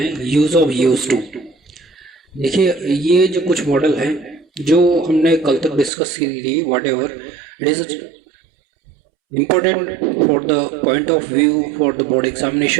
यूज ऑफ यूज टू. देखिए, ये जो कुछ मॉडल हैं जो हमने कल तक डिस्कस की थी, what ever it is important for the point of view for the board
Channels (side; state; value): left; drops out; at 5.9 s